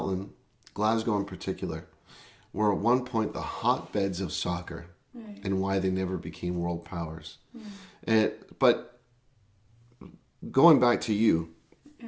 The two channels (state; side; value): identical; both; correlation 1.00